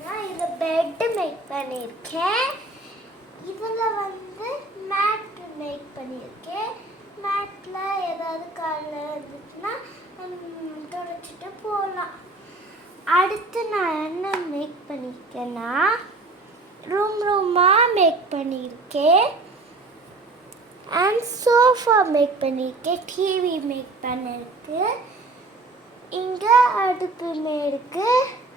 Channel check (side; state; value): left; quieter; 3.2 dB